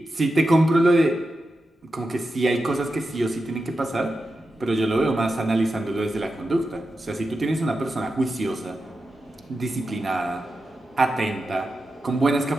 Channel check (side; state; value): both; normal; correlation 0.90